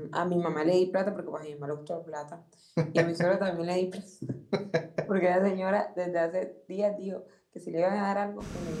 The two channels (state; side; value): identical; both; correlation 1.00